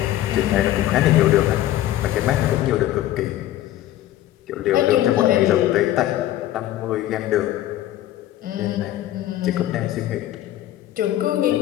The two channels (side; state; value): right; quieter; 13.7 dB